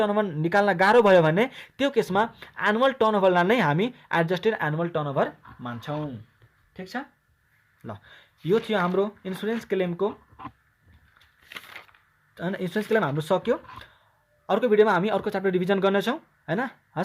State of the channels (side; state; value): both; identical; correlation 1.00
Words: निकाल्न गाह्रो भयो भने त्यो केसमा एनुअल टर्नओभरलाई नै हामी एडजस्टेड एनुअल टर्नओभर मान्छौँ। ठिक छ ल यो थियो हाम्रो इन्सुरेन्स क्लेमको होइन इन्सुरेन्स क्लेम हाम्रो सक्यो अर्को भिडियोमा हामी अर्को च्याप्टर रिभिजन गर्नेछौँ हैन